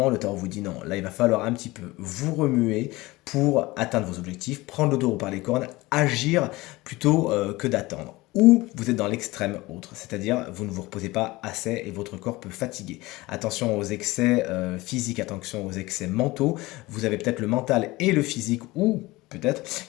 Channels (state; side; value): quieter; right; 20.5 dB